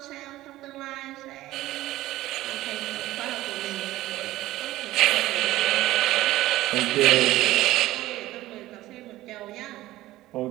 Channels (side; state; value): left; quieter; 16.4 dB